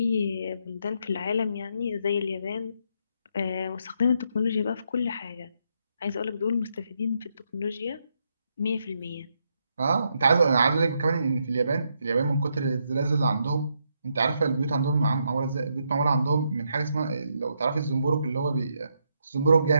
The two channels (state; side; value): inverted; both; correlation -0.78